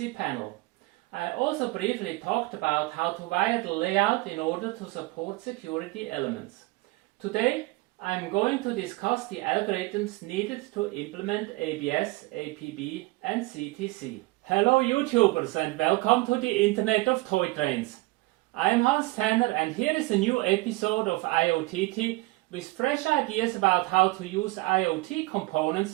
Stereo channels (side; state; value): left; quieter; 21.7 dB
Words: panel. I also briefly talked about how to wire the layout in order to support security elements. Today I'm going to discuss the algorithms needed to implement ABS, APB and CTC. Hello YouTubers and welcome to the Internet of Toy Trains. I am Hans Tanner and here is a new episode of IoTT with fresh ideas about how to use IoT